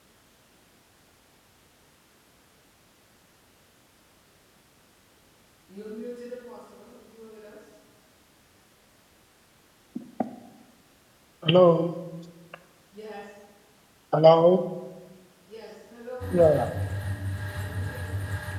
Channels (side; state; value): both; identical; correlation 1.00